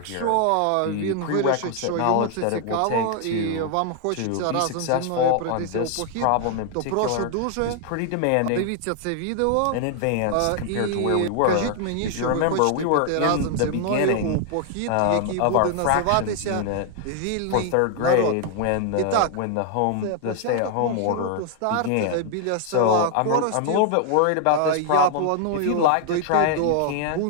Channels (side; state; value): both; different; correlation 0.00